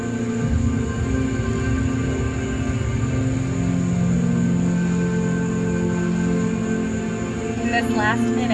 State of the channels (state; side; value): identical; both; correlation 1.00